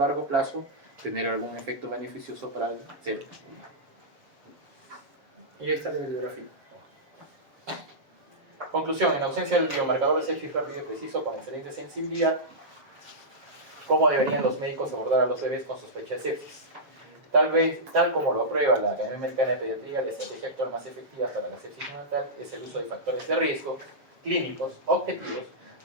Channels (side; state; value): left; late; 7.0 ms